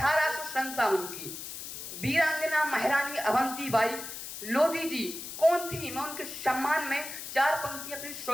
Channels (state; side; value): noise; left; hiss, 9 dB below the sound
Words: की वीरांगना महारानी अवंतीबाई लोधी जी कौन थी? मैं उनके सम्मान में 4 पंक्तियां अपनी